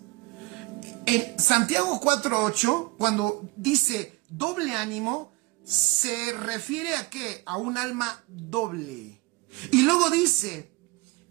en Santiago 4:8, cuando dice doble ánimo, se refiere a ¿qué? A un alma doble. Y luego dice,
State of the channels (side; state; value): left; quieter; 23.6 dB